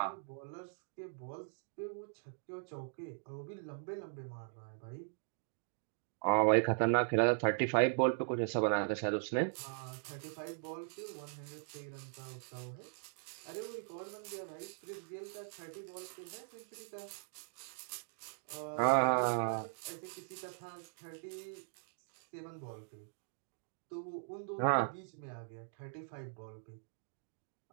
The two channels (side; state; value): left; silent; digital silence